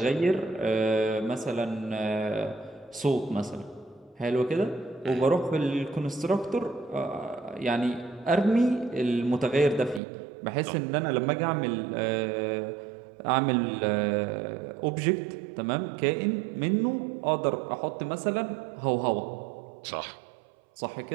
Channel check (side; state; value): left; drops out; at 10.0 s